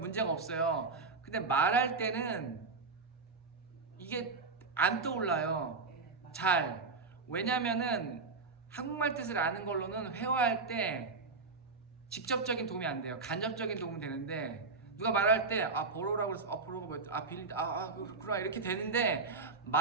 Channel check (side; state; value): left; quieter; 4.1 dB